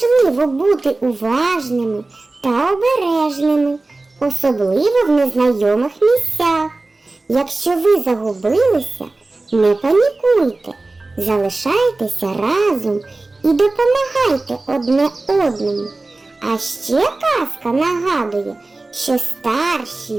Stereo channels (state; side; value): quieter; left; 3.2 dB